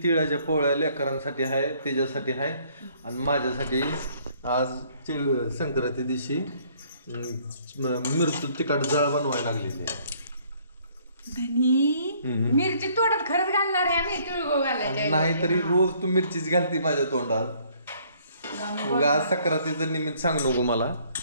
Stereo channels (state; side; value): inverted; both; correlation -0.62